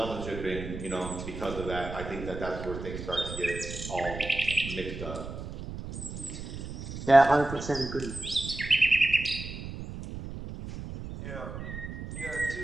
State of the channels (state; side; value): noise; right; rumble, 9 dB below the sound